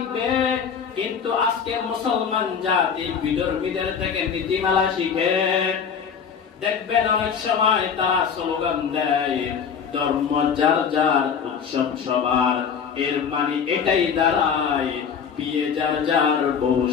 কিন্তু আজকে মুসলমান জাতি বিধর্মীদের থেকে নীতিমালা শিখে। দেখবেন অনেক সময় তারা স্লোগান দেয়, ধর্ম যার যার, উৎসব সবার। এর মানে এটাই দাঁড়ায় বিয়ে যার যার, বউ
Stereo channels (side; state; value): right; quieter; 6.9 dB